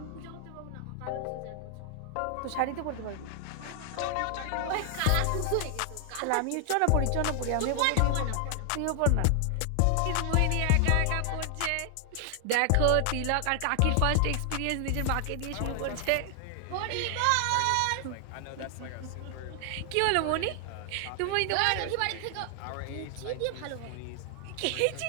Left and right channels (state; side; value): different; both; correlation 0.00